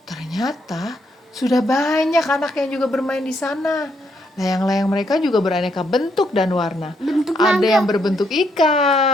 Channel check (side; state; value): both; normal; correlation 0.76